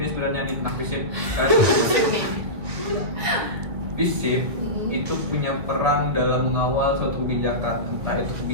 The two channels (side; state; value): left; late; 1.7 ms